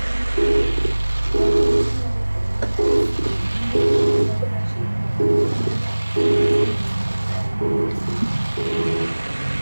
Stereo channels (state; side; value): inverted; both; correlation -1.00